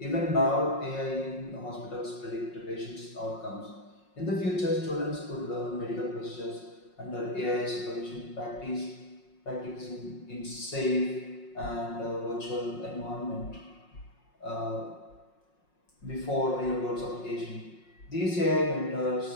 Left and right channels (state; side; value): late; right; 5.5 ms